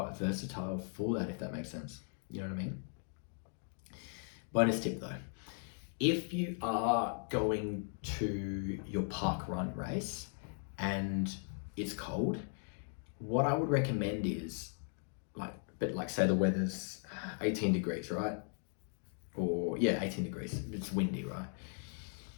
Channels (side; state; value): right; silent; 53 dB below the other